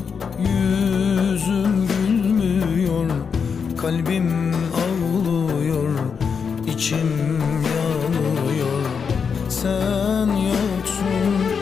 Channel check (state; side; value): quieter; right; 6.2 dB